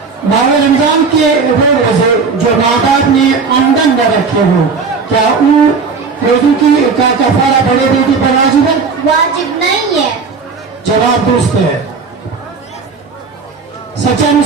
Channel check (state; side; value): quieter; left; 4.9 dB